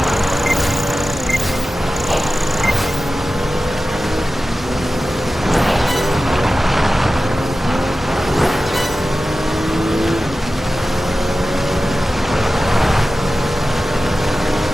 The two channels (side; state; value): both; normal; correlation 0.94